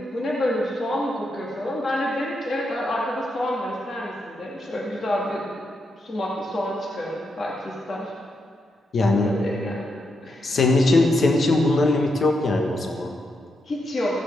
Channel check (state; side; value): normal; both; correlation 0.83